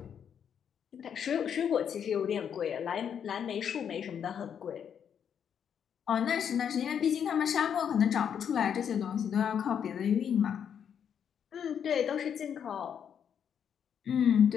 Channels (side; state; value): right; quieter; 8.2 dB